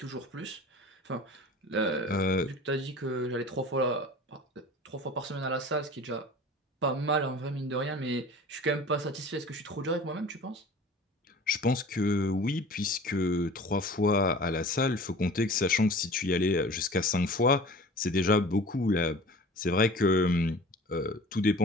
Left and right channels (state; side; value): normal; both; correlation 0.42